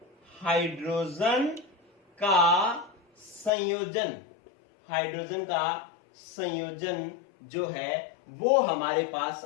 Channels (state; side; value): drops out; right; at 3.5 s